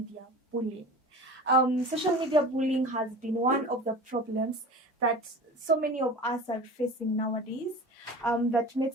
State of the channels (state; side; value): normal; both; correlation 0.35